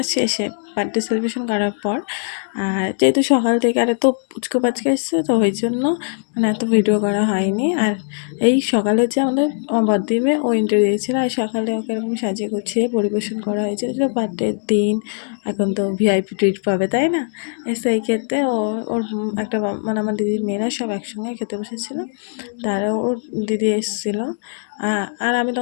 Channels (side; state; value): right; silent; digital silence